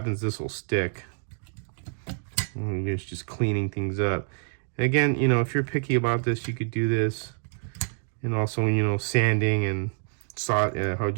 this will stick. And it's just cleaning things up. And again, you know, if you're picky about this, you could do this. And also, you know, sanding and how'd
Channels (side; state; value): left; silent; 60 dB below the other